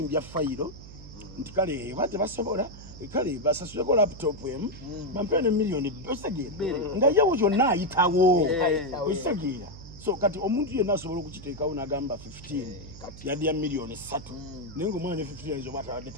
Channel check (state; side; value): noise; right; hum, 16 dB below the sound